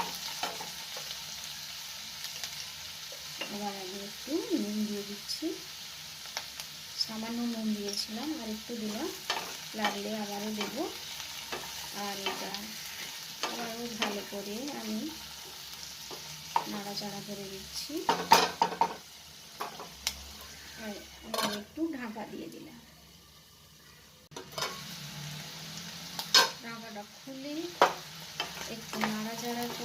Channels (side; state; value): both; identical; correlation 1.00